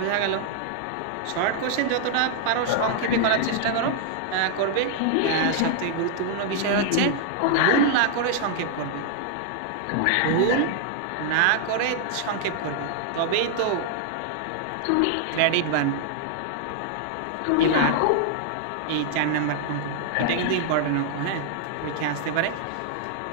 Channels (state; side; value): different; both; correlation -0.01